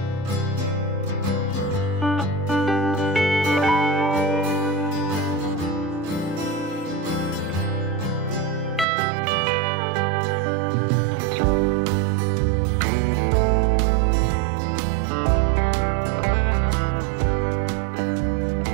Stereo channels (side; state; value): left; drops out; at 8.8 s